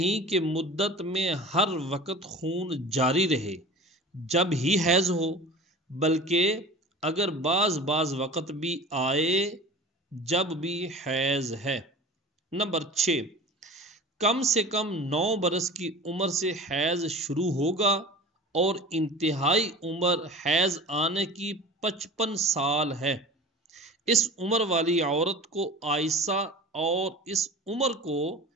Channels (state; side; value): normal; both; correlation 0.37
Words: کہ مدت میں ہر وقت خون جاری رہے جب ہی حیض ہو، بلکہ اگر بعض وقت بھی آئے جب بھی حیض ہے۔ نمبر 6، کم سے کم 9 برس کی عمر سے حیض شروع ہوگا اور انتہائی عمر حیض آنے کی 55 سال ہے۔ اس عمر والی عورت کو عائسہ اور اس عمر کو